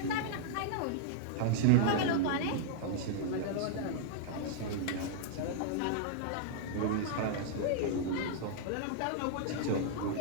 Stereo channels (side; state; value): both; different; correlation -0.01